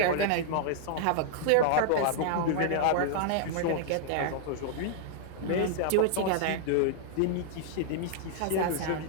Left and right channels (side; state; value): both; different; correlation -0.01